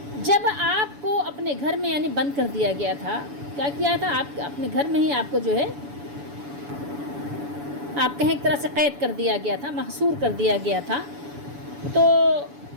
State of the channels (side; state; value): left; late; 7.0 ms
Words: جب آپ کو اپنے گھر میں یعنی بند کر دیا گیا تھا، کیا کیا تھا، آپ اپنے گھر میں ہی آپ کو جو ہے آپ کہیں ایک طرح سے قید کر دیا گیا تھا، محصور کر دیا گیا تھا، تو